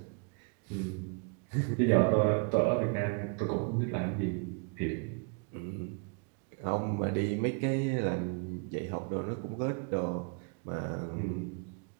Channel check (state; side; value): quieter; left; 35.8 dB